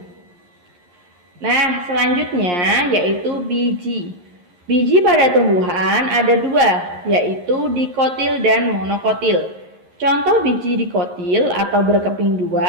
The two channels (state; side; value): late; left; 11 ms